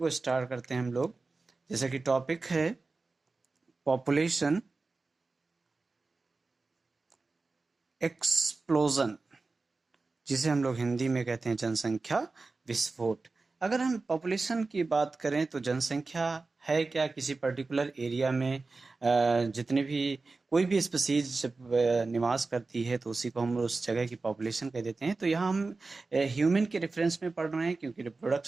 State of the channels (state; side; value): quieter; left; 3.7 dB